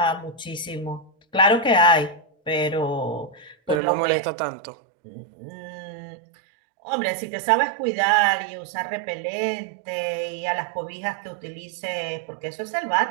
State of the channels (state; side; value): drops out; left; at 3.8 s